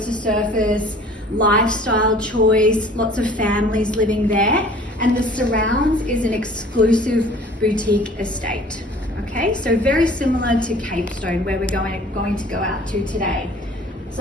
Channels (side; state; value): both; normal; correlation 0.49